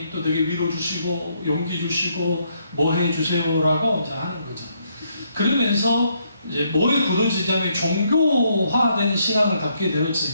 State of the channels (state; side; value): inverted; both; correlation -0.74